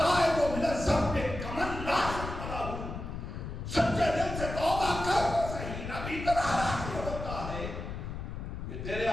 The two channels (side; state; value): left; noise; rumble, 7 dB below the sound